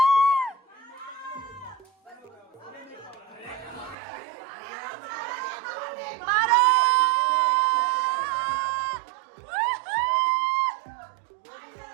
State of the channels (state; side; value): drops out; left; at 4.0 s